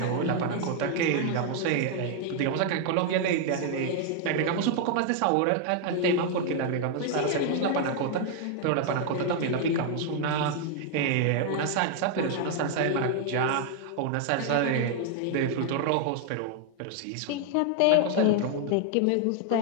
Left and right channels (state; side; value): different; both; correlation 0.00